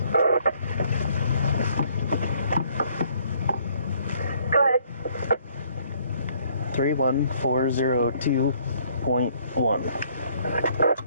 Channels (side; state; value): both; inverted; correlation -0.64